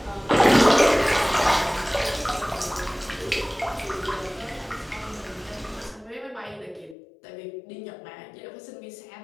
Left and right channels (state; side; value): drops out; right; at 7.0 s